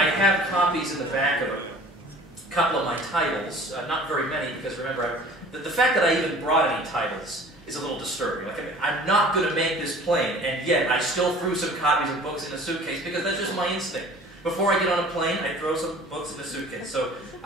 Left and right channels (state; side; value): normal; both; correlation 0.47